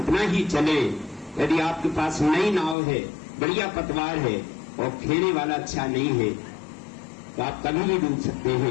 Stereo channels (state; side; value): drops out; right; at 2.8 s